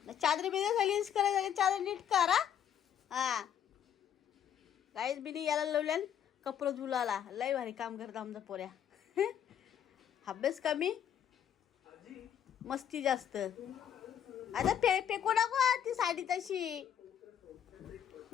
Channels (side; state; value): right; quieter; 9.3 dB